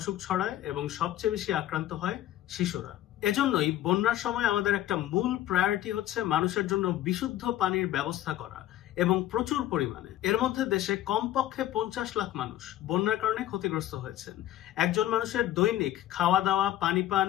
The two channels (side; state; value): right; quieter; 13.4 dB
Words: ছড়ায় এবং সবচেয়ে বেশি আক্রান্ত হয় শিশুরা। এজন্যই বন্যার সময় আমাদের একটা মূল প্রায়োরিটি হচ্ছে মানুষের জন্য বিশুদ্ধ পানির ব্যবস্থা করা এবং প্রচুর পরিমাণে। এর মধ্যে দেশে কমপক্ষে 50 লাখ মানুষ বন্যার কারণে ক্ষতিগ্রস্ত হয়েছেন। একজন মানুষের দৈনিক খাওয়া দাওয়া, পানি পান,